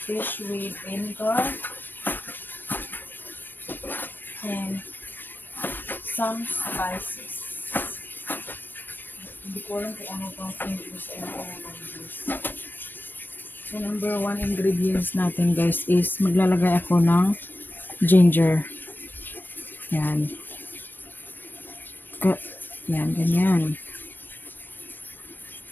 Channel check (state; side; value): late; right; 0.092 ms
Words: with vinegar and some spices. Hindi ko alam kung ano bang English and English. So number one ingredients natin guys is maglalagay ako ng ginger. Yan. Yan, ganyan.